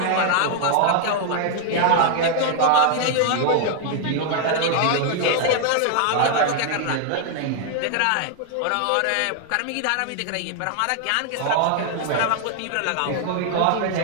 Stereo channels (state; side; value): different; both; correlation 0.00